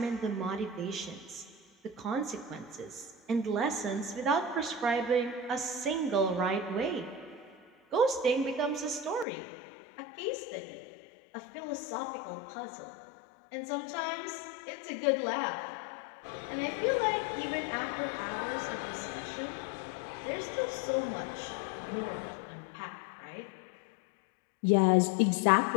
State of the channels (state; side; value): drops out; right; at 9.2 s